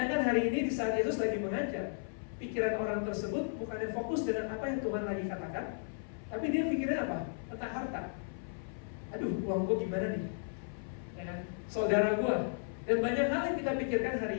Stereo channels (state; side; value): silent; right; 55 dB below the other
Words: hari ini di saat Yesus lagi mengajar, pikiran orang tersebut bukannya fokus dengan apa yang Tuhan lagi katakan, tapi dia pikirin apa? Tentang harta. Aduh, uang gue gimana nih? Ya kan? Saudara gue. Dan banyak hal yang kita pikirkan